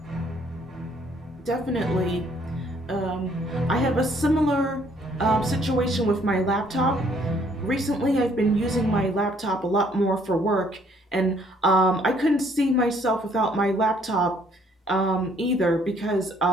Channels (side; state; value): both; normal; correlation 0.64